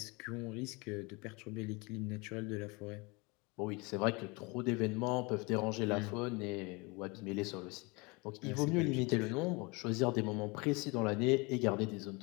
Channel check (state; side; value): quieter; right; 27.4 dB